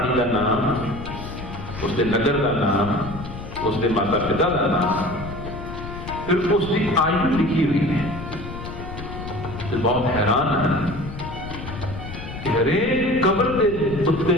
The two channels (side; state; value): left; noise; rumble, 10 dB below the sound